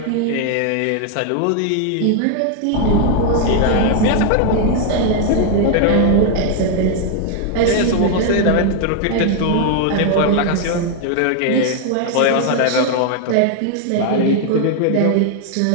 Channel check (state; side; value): different; both; correlation 0.00